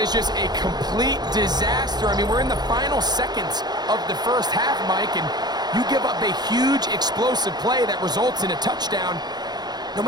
is just a complete disaster. I mean, we're in the final seconds of the first half, Mike, and you give up a huge explosive play that results in a touchdown. No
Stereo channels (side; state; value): left; late; 0.20 ms